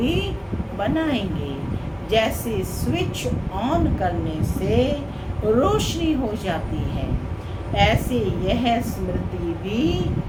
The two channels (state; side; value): identical; both; correlation 1.00